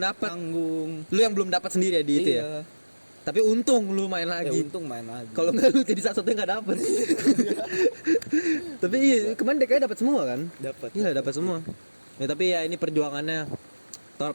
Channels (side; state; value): both; inverted; correlation -1.00